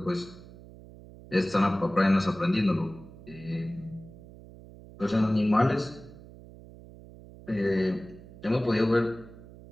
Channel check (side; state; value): right; noise; hum, 19 dB below the sound